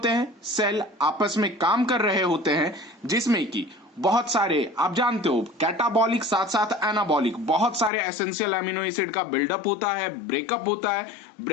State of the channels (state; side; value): drops out; right; at 7.9 s